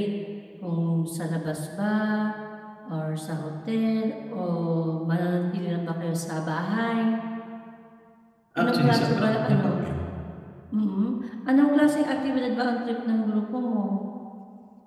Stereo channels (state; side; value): identical; both; correlation 1.00